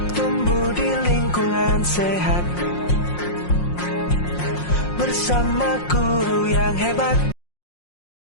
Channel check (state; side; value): late; right; 5.6 ms